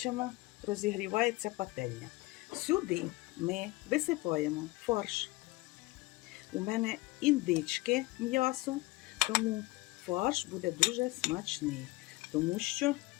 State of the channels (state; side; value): quieter; right; 21.7 dB